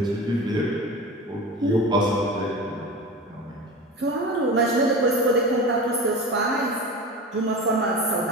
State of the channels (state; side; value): normal; both; correlation 0.31